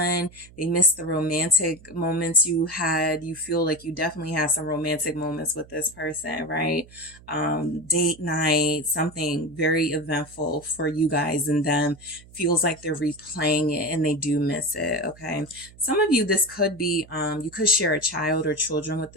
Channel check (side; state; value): right; noise; hum, 23 dB below the sound